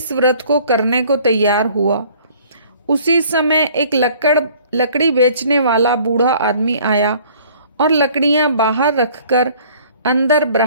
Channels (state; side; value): inverted; both; correlation -0.54